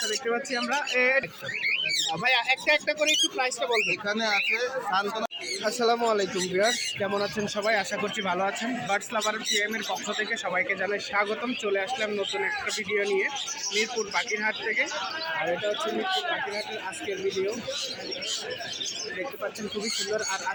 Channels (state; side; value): identical; both; correlation 1.00